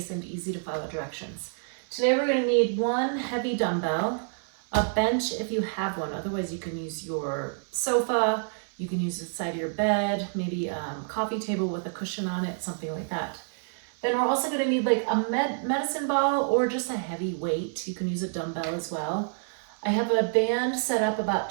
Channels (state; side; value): silent; left; 57 dB below the other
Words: and easy to follow directions. Today we're going to need one heavy dumbbell, a bench if you have one. Otherwise you can use your sofa, you can use the side of your bed, maybe a coffee table with a cushion on it, something like that. Then we're also going to need like a medicine ball or just a heavy weight. You can use a dumbbell as well. I have a band set up about